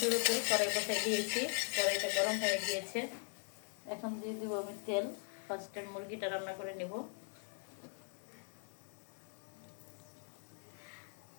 কড়াই বসাই দিয়েছি, কড়াইটা গরম হয়ে গিয়েছে। এখন দিয়ে দিব আমি তেল। ফার্স্ট টাইম মুরগিটা রান্না করে নেব।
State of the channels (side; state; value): right; silent; 51 dB below the other